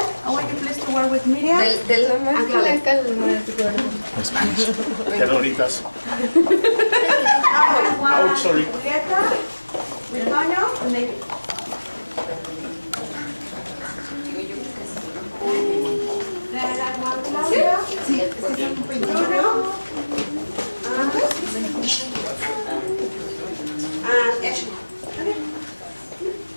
want you please to work with Miriam. De lo más blanca al más gordo. Spanish. Ternuritas. Oh, sorry. Julieta, with Toño, and David. Claudia. Sí. Bruno. And Ashley.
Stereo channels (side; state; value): both; inverted; correlation -1.00